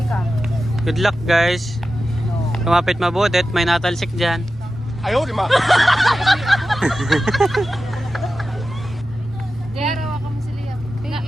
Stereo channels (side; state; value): both; normal; correlation 0.93